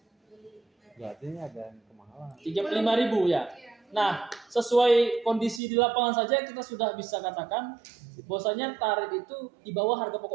Berarti ini ada yang kemahalan. 35.000 ya. Iya. Nah, sesuai kondisi di lapangan saja kita sudah bisa katakan bahwasanya tarif itu di bawah harga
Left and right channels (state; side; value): drops out; left; at 5.6 s